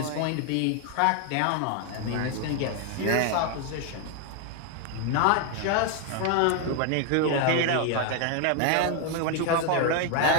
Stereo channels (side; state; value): both; different; correlation 0.00